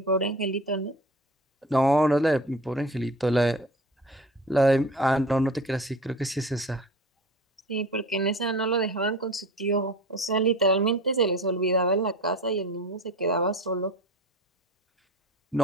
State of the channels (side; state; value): both; normal; correlation 0.36